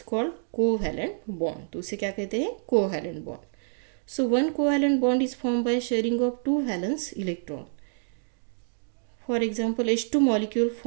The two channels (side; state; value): left; silent; digital silence